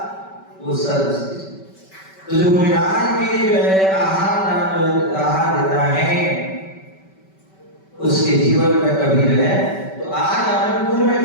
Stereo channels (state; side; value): late; right; 5.2 ms